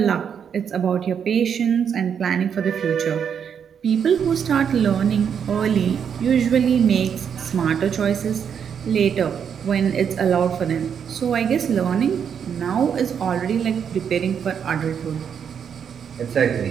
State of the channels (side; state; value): left; quieter; 7.6 dB